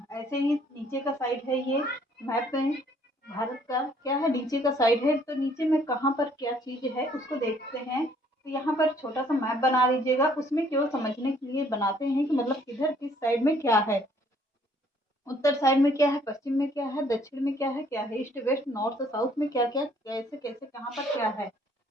ऐसे ही नीचे का साइड है। ये मैप में भारत का क्या है, नीचे का साइड है। तो नीचे में कहाँ पर क्या चीज़ है उसको देखते हैं। तो यहाँ पर छोटा सा मैप बना लीजिएगा। उसमें केवल समझने के लिए बनाते हैं कि मतलब किधर किस साइड में क्या है, उत्तर साइड में क्या है, पश्चिम में क्या है, दक्षिण में क्या है, ईस्ट वेस्ट नॉर्थ साउथ में क्या क्या, कैसे कैसे कहाँ पर क्या है।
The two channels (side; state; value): both; normal; correlation 0.62